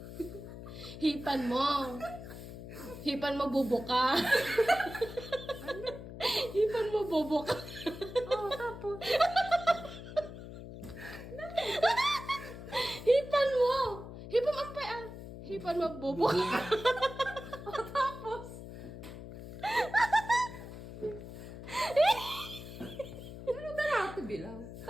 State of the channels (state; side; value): noise; left; hum, 12 dB below the sound